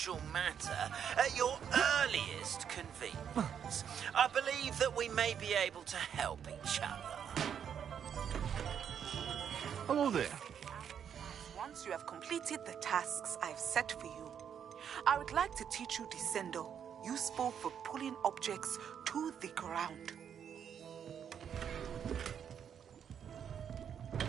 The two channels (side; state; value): left; quieter; 8.3 dB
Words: matter at your earliest convenience. I believe that we may be able to help each other. Hello there. Once you have completed the tasks I've set for you, I would like to teach you Descendo, useful for pulling objects to the ground.